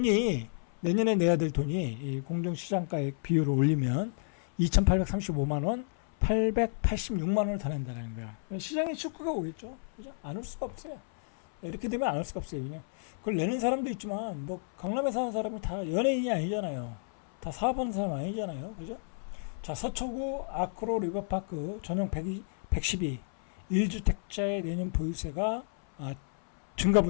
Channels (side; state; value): right; silent; 57 dB below the other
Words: 내년에 내야 될 돈이 이 공정시장가액 비율을 올리면 2,835만 원, 886만 원을 더 낸다는 거야. 시장에 축구가 오겠죠. 그죠? 안 올 수가 없어요. 이렇게 되면 안 올 수가 없어요. 그냥 그걸 내는 사람도 있지만 뭐 강남에 사는 사람이 다 연예인이 아니잖아요. 다 사업하는 사람 아니잖아요. 그죠? 자, 서초구 아크로 리버파크 전용 112 1주택자의 내년 보유세가